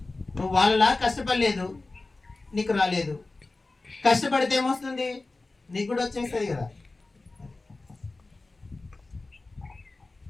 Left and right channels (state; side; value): quieter; right; 3.3 dB